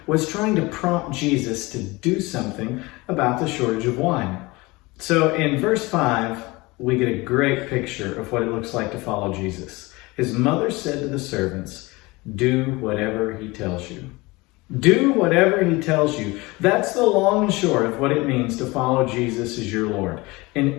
was trying to prompt Jesus to do something about the shortage of wine. So in verse 5, we get a great picture of what it looks like to follow Jesus. His mother said to the servants, "Do whatever he tells you." Do whatever he tells you. That's the long and short of what it means to follow Jesus as your Lord.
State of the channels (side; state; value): right; quieter; 23.0 dB